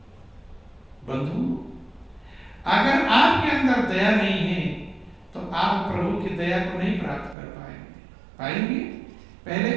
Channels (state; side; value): drops out; left; at 7.4 s